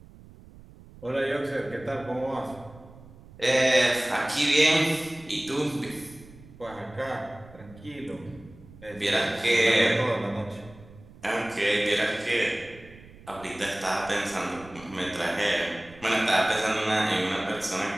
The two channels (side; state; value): right; noise; rumble, 21 dB below the sound